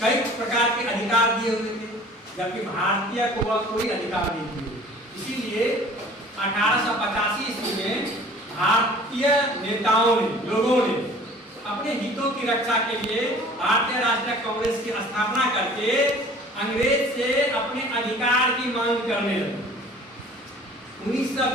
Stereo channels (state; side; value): normal; both; correlation 0.48